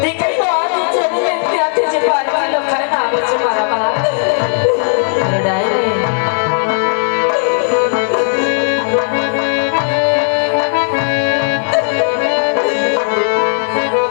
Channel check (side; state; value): right; silent; digital silence